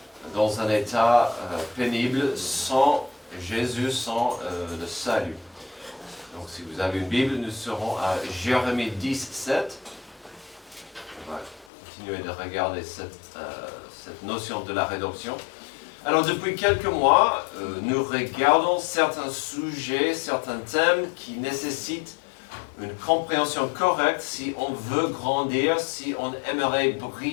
dans un état pénible sans Jésus, sans le salut. Donc si vous avez une Bible, nous serons à Jérémie 17. On va continuer de regarder cette notion de la rédemption. Alors depuis quelques mois, nous regardons certains sujets, certains thèmes qui nécessitent une compréhension correcte si on veut grandir, si on aimerait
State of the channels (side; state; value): right; drops out; at 11.7 s